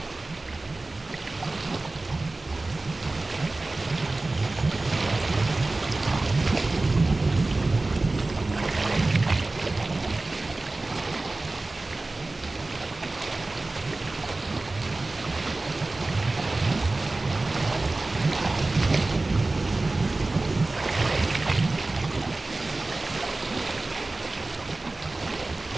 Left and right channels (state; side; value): quieter; left; 3.1 dB